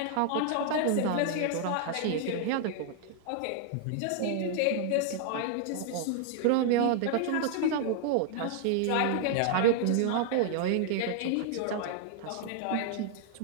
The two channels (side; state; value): both; different; correlation 0.00